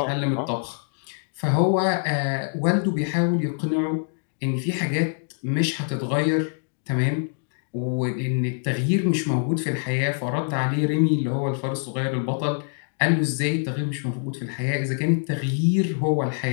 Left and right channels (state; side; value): silent; right; digital silence